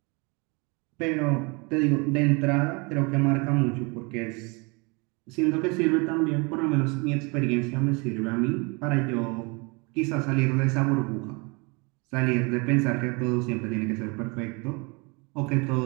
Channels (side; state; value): left; quieter; 29.5 dB